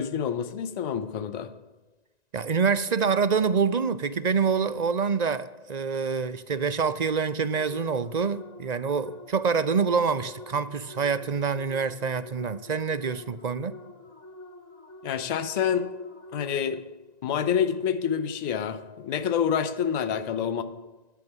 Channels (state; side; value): late; left; 1.9 ms